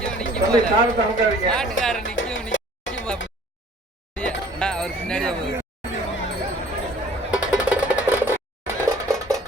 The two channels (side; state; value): both; normal; correlation 0.53